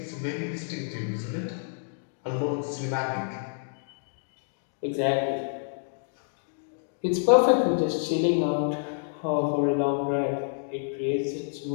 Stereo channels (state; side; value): silent; right; digital silence